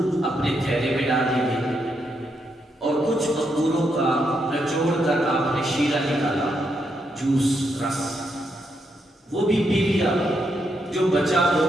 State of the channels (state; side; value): normal; both; correlation 0.80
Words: اپنے تھیلے میں ڈال دیے، اور کچھ انگوروں کا نچوڑ کر آپ نے شیرہ نکالا، جوس، رس، وہ بھی پی لیا، جو بچا وہ